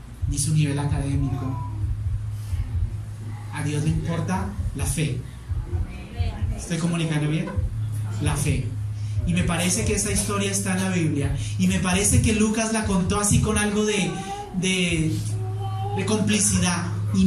ni su nivel académico. A Dios le importa la fe. ¿Estoy comunicando bien? La fe. Y me parece que esa historia está en la Biblia. Y me parece que Lucas la contó así con algo de complicidad.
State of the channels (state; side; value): identical; both; correlation 1.00